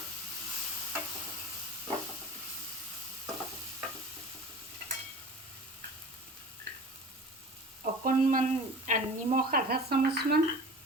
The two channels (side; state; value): both; normal; correlation 0.39